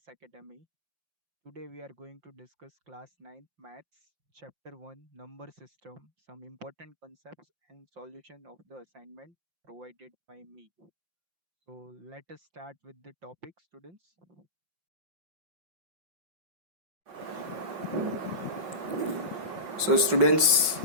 Academy. Today we are going to discuss class 9 maths chapter 1 number system, some important concepts and solution of the assignment provided by me. So let us start with the topic students. So students,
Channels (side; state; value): left; late; 5.3 ms